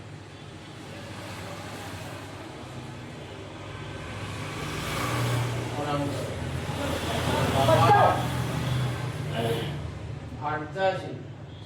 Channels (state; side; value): identical; both; correlation 1.00